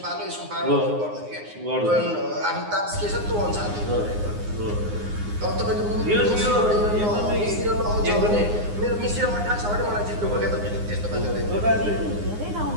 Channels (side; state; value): left; late; 9.7 ms